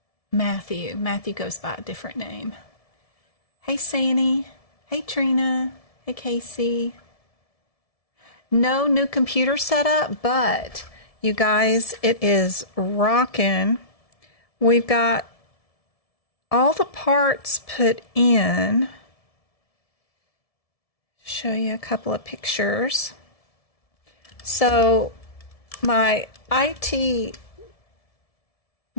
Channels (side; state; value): right; late; 1.7 ms